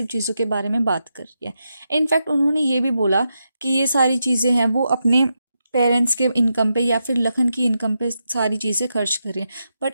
चीज़ों के बारे में बात कर रही है। इनफैक्ट उन्होंने ये भी बोला कि ये सारी चीज़ें हैं वो अपने पेरेंट्स के इनकम पे या फिर लखन की इनकम पे सारी चीज़ें खर्च कर रही हैं। बट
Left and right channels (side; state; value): both; inverted; correlation -0.85